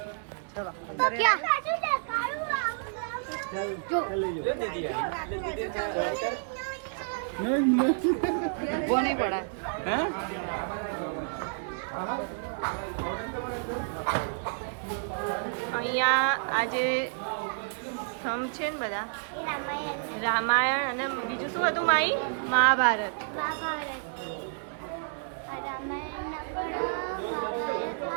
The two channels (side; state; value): left; silent; digital silence